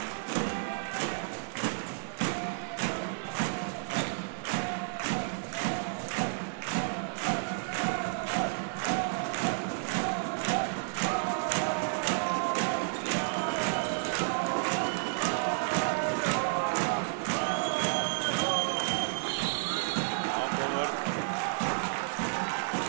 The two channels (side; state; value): left; silent; digital silence